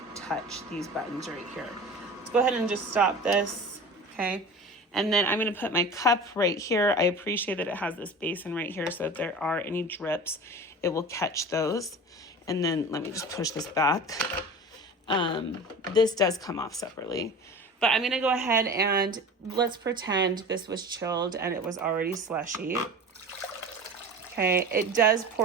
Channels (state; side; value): normal; both; correlation 0.36